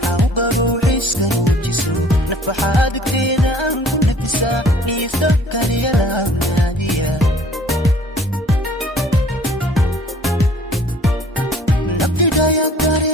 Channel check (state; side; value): normal; both; correlation 0.53